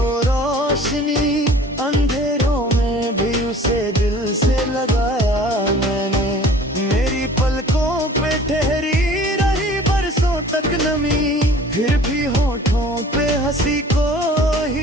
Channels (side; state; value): both; normal; correlation 0.48